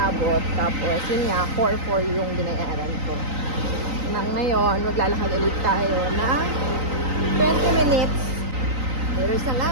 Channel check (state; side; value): late; left; 3.9 ms